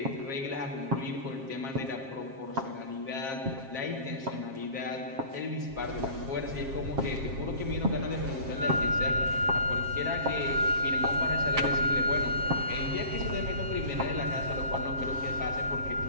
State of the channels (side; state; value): left; late; 7.4 ms